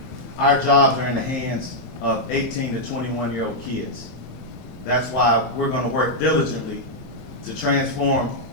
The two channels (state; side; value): normal; both; correlation -0.05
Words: our jobs are in the hands of 18 to 21-year-old kids. That's why we're going to work diligently to transform